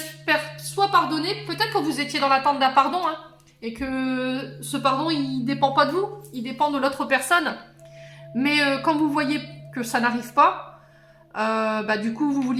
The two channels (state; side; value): identical; both; correlation 1.00